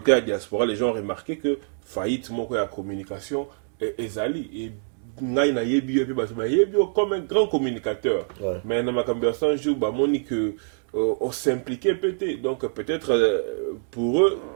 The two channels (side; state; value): left; silent; digital silence